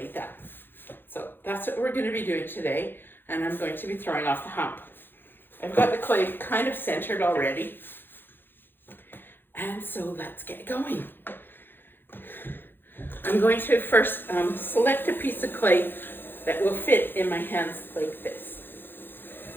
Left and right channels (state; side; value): late; right; 0.099 ms